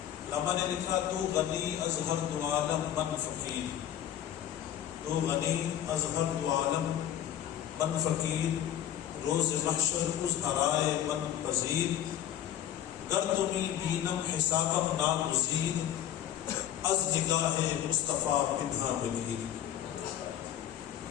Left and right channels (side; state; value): right; quieter; 11.1 dB